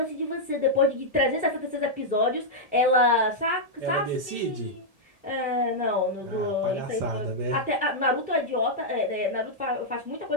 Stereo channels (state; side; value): late; left; 1.7 ms